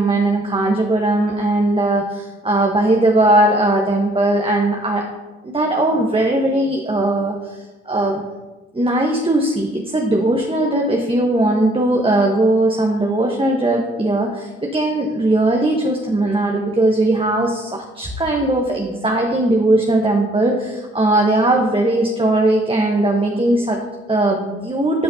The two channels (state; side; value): normal; both; correlation 0.62